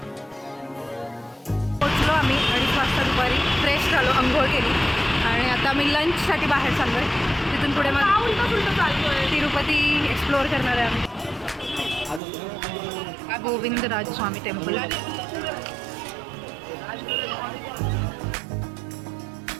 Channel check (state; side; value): drops out; left; at 12.2 s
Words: पोचलो आम्ही 2:30 वाजता दुपारी. फ्रेश झालो, अंघोळ केली आणि आता आम्ही लंचसाठी बाहेर चाललोय. तिथून पुढे मग तिरुपती एक्सप्लोअर करणार आहे आम्ही. गोविंदराज स्वामी टेम्पल.